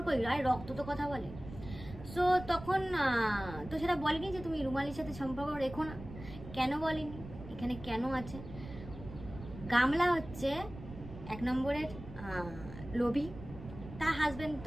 আর রক্ত তো কথা বলে। সো তখন তো সেটা বলেনি যে তুমি রুমালির সাথে সম্পর্ক রেখো না। কেন বলেনি? এখানে কেন আছে? গামলা হচ্ছে 1 নম্বরের লোভী, তার হাজবেন্ড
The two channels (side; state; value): right; noise; rumble, 13 dB below the sound